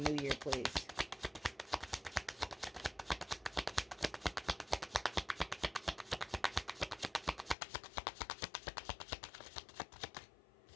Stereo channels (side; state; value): right; drops out; at 7.6 s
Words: new year, please?